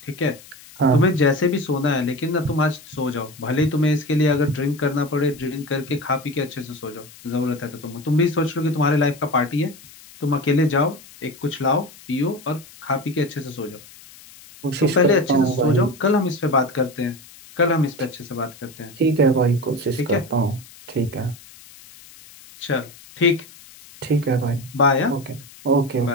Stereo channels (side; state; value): left; noise; hiss, 21 dB below the sound